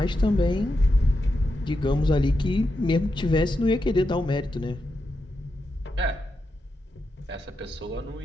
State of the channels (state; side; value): normal; both; correlation 0.87